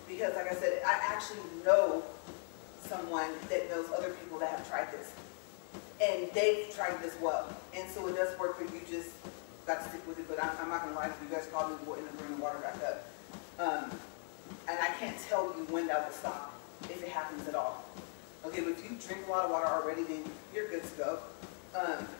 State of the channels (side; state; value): right; silent; 52 dB below the other